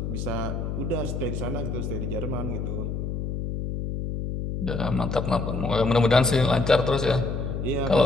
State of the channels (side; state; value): left; noise; hum, 3 dB below the sound